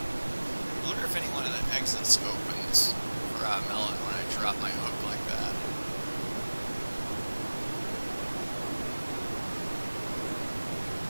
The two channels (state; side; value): inverted; both; correlation -1.00